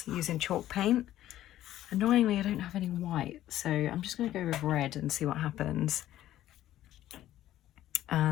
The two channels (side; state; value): right; quieter; 13.2 dB